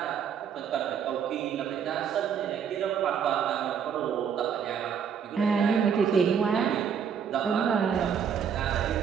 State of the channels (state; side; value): quieter; left; 7.5 dB